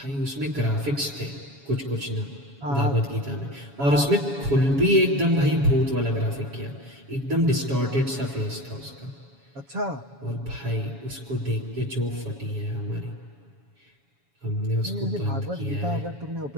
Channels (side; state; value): left; late; 7.2 ms